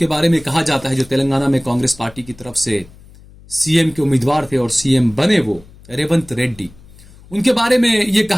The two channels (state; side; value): noise; left; hum, 23 dB below the sound